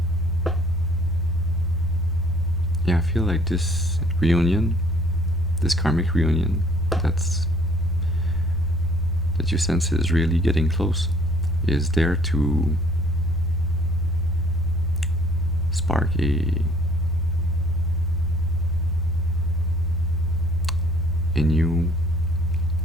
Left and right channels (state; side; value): normal; both; correlation 0.58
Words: Yeah, I feel like this reunion, this karmic reunion, that you sense is really getting close, is there to spark a new,